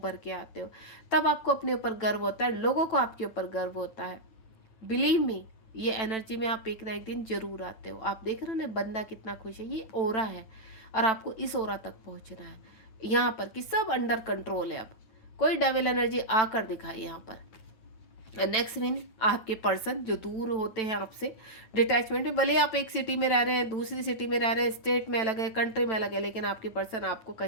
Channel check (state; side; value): late; right; 9.0 ms